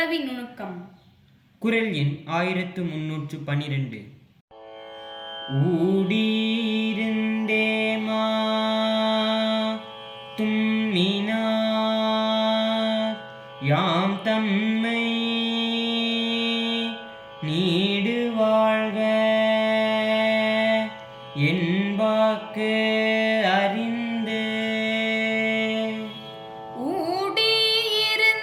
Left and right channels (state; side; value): identical; both; correlation 1.00